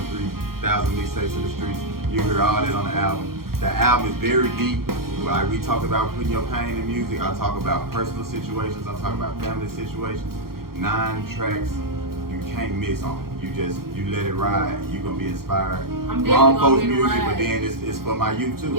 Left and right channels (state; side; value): late; left; 0.93 ms